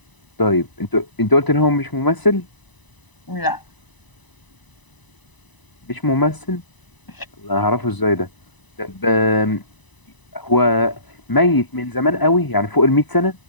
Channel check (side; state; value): right; late; 1.0 ms